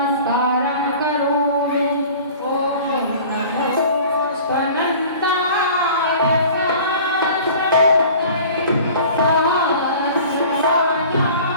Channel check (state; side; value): inverted; both; correlation -0.44